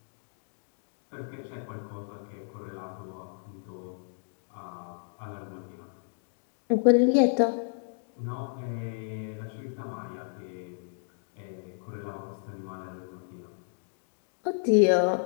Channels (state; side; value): silent; right; digital silence